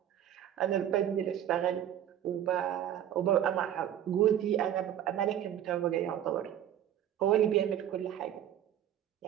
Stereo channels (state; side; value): quieter; left; 10.8 dB